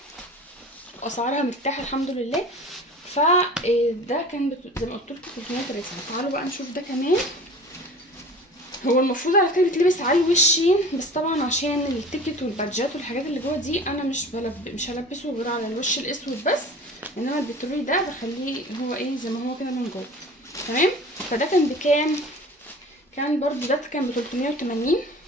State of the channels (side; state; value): both; normal; correlation 0.41